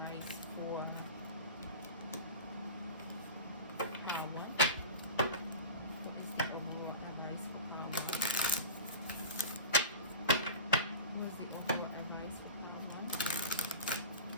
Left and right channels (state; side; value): inverted; both; correlation -0.31